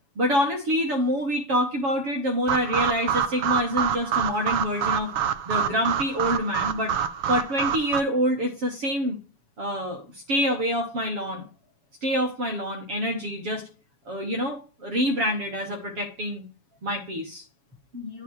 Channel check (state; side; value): late; left; 7.2 ms